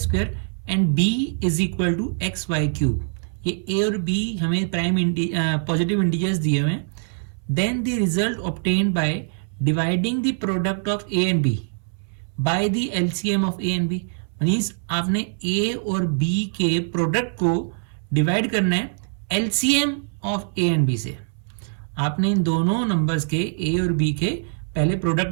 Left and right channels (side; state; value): left; silent; 63 dB below the other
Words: and b is equal to x y cube. ये a और b हमें prime positive integers दिए हुए हैं। Then the result obtained by dividing the product of a and b by the LCM of a and b। Means आपने a और b के product को डिवाइड करना है LCM of a and b से। आपने इन दोनों नंबर्स के a और b के पहले